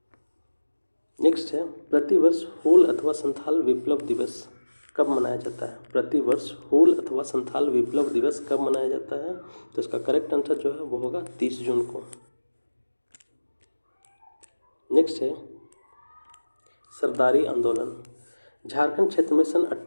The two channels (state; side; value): inverted; both; correlation -1.00